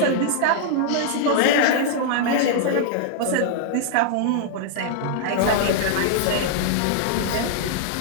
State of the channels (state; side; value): different; both; correlation -0.01